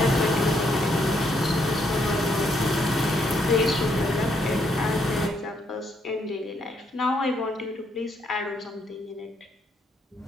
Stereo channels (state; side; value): normal; both; correlation 0.74